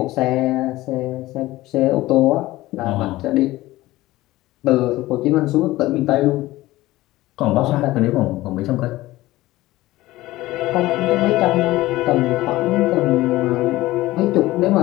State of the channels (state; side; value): quieter; right; 17.6 dB